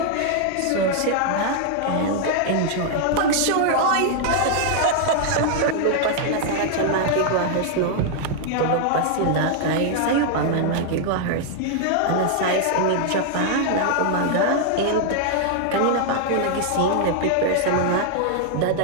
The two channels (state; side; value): different; both; correlation 0.00